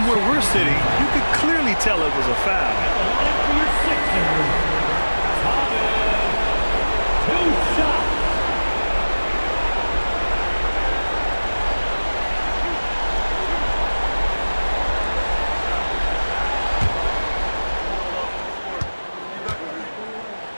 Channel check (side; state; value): both; inverted; correlation -1.00